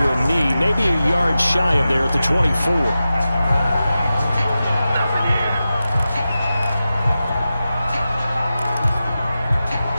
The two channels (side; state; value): both; inverted; correlation -0.93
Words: a knee, maybe a yard shy of there at the 24.